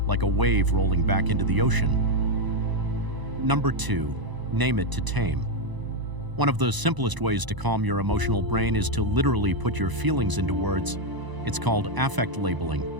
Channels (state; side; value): late; left; 1.0 ms